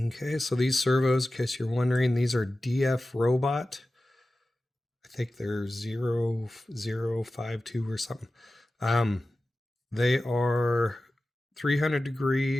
so these servos, in case you're wondering, these are DF Robot. I think they're 0052 or something. They are 300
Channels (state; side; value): normal; both; correlation 0.95